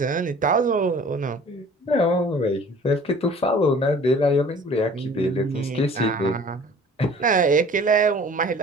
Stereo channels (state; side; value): normal; both; correlation 0.48